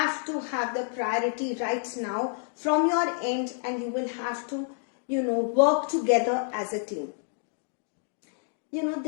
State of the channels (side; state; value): right; silent; 58 dB below the other